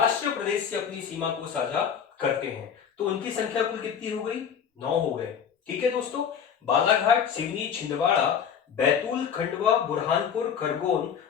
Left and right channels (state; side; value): quieter; right; 7.7 dB